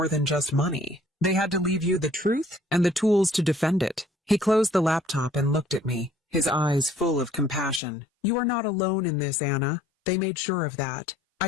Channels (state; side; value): drops out; right; at 7.8 s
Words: than just money. They had to leave you the truth and the tools to defend it." He closed the laptop and looked at me, his eyes full of compassion. "You are not alone in this, Anna. They made sure of that."